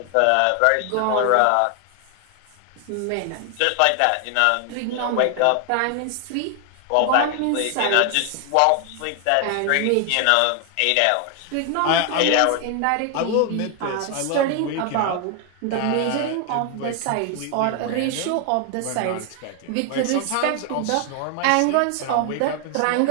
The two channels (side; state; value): both; different; correlation 0.00